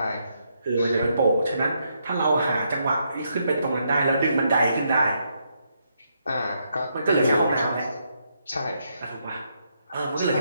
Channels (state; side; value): inverted; both; correlation -0.78